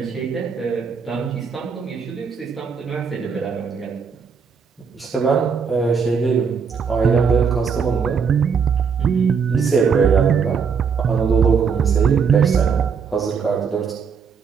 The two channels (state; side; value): quieter; left; 6.1 dB